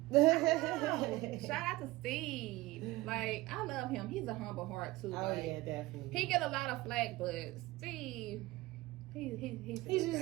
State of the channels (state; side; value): quieter; left; 19.5 dB